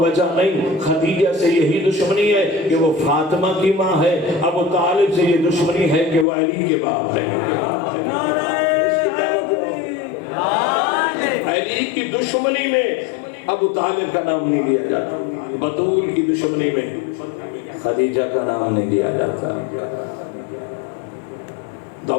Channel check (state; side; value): drops out; right; at 6.2 s